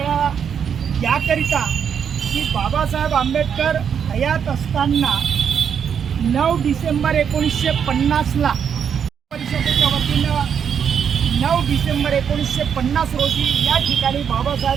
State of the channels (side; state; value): left; quieter; 7.6 dB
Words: याकरिता की बाबासाहेब आंबेडकर हयात असताना 9 डिसेंबर 1950ला परिषदेच्या वतीनं 9 डिसेंबर 1950 रोजी या ठिकाणी